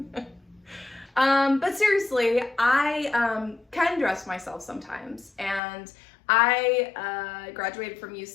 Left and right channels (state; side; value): drops out; right; at 5.6 s